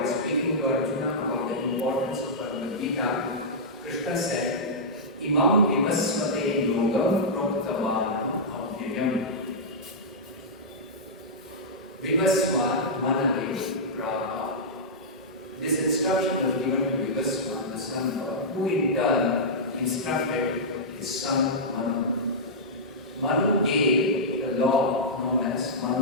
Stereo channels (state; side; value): normal; both; correlation -0.12